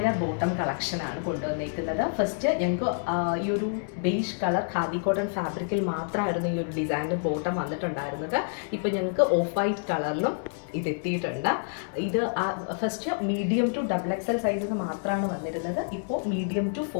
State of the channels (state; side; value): silent; right; digital silence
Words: ബോട്ടം കളക്ഷനാണ് കൊണ്ടുവന്നിരിക്കുന്നത്. ഫസ്റ്റ് ഞങ്ങൾക്ക് ഈ ഒരു ബേജ് കളർ ഖാദി കോട്ടൺ ഫാബ്രിക്കിൽ മാത്രമായിരുന്നു ഈ ഒരു ഡിസൈനർ ബോട്ടം വന്നിട്ടുണ്ടായിരുന്നത്. ഇപ്പോൾ ഞങ്ങൾക്ക് ഓഫ് വൈറ്റ് കളറിലും ഇതെത്തിയിട്ടുണ്ട്. ഇത് first medium to XXL sizes മാത്രമാണ് വന്നിരുന്നത്. ഇപ്പോൾ medium to